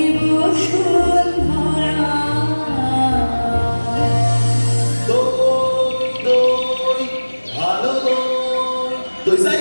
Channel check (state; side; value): inverted; both; correlation -1.00